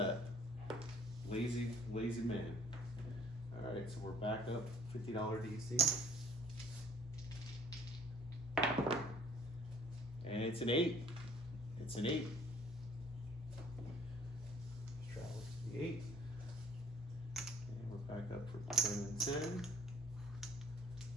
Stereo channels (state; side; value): normal; both; correlation 0.57